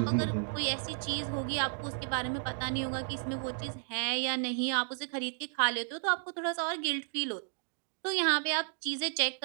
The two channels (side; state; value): left; silent; digital silence